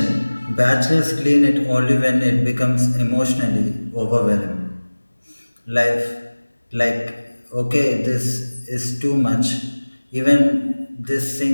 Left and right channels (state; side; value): inverted; both; correlation -1.00